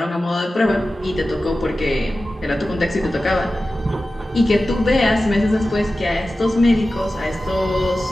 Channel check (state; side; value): normal; both; correlation 0.94